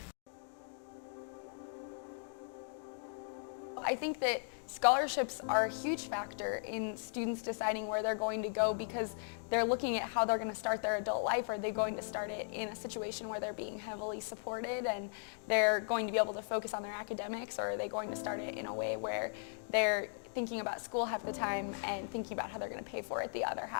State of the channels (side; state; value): right; silent; digital silence